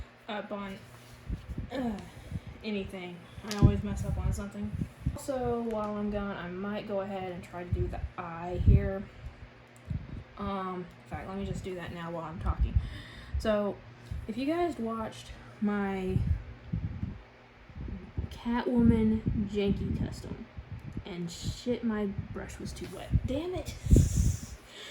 up on anything. I always mess up on something. Also, while I'm gone, I might go ahead and try to do the eye here. In fact, let me just do that now while I'm talking. So, if you guys watched my Catwoman janky custom, and shit, my brush was too wet. Damn it!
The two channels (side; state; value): both; identical; correlation 1.00